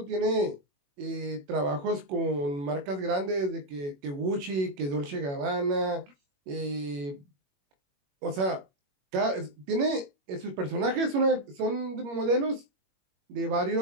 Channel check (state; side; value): late; left; 21 ms